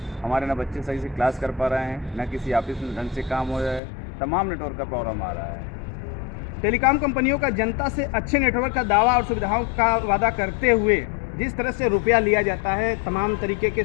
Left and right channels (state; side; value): drops out; right; at 3.8 s